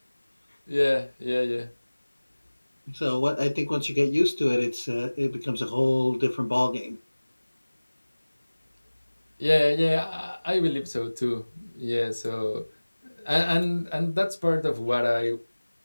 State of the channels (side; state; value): both; inverted; correlation -1.00